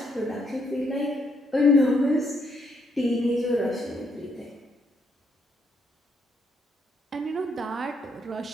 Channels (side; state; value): both; normal; correlation 0.74